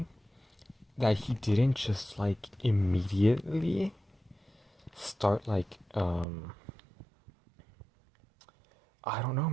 that he didn't just immediately start I don't know,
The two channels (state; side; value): drops out; left; at 6.2 s